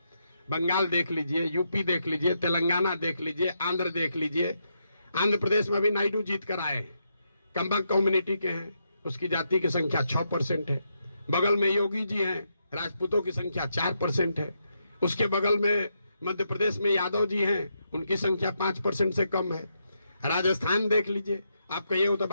बंगाल देख लीजिए, यूपी देख लीजिए, तेलंगाना देख लीजिए, आंध्र देख लीजिए। आंध्र प्रदेश में भी नायडू जीत कर आए, कंबक कम्युनिटी के हैं, उसकी जाति की संख्या 6% है। बगल में योगी जी हैं, राजपूतों की संख्या 4% है। उसके बगल में मध्य प्रदेश में यादव जी हैं, उनकी संख्या 5% से कम है। राजस्थान देख लीजिए, आप कहिए वो तो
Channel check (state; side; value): inverted; both; correlation -0.81